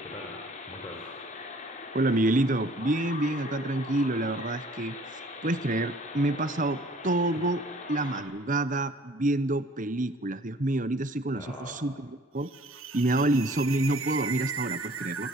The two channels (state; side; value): normal; both; correlation 0.54